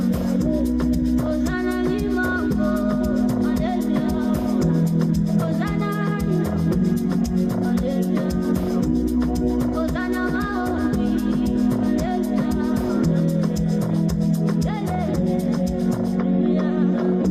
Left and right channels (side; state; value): both; identical; correlation 1.00